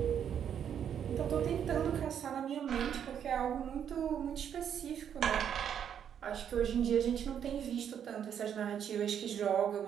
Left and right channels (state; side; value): quieter; left; 8.7 dB